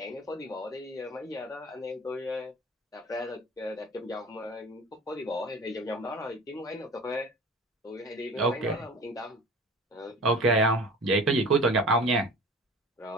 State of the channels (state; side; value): normal; both; correlation 0.40